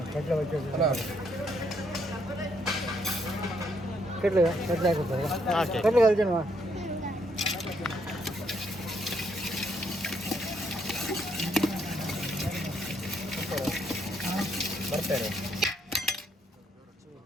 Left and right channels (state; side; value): normal; both; correlation 0.73